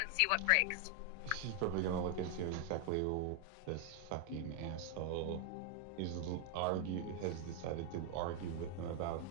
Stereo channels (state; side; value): different; both; correlation 0.00